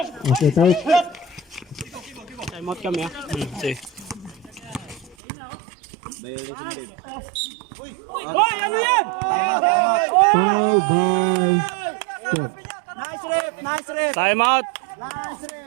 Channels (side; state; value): left; drops out; at 5.2 s